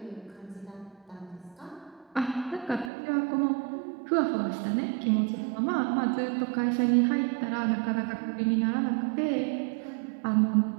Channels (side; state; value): left; drops out; at 2.9 s